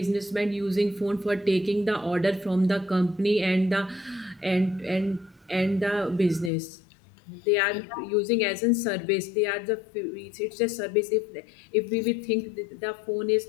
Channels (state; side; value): drops out; right; at 6.5 s